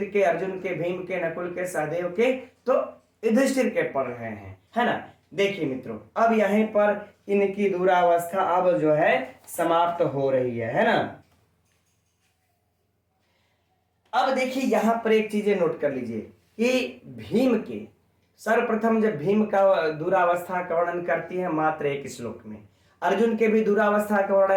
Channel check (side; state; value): both; identical; correlation 1.00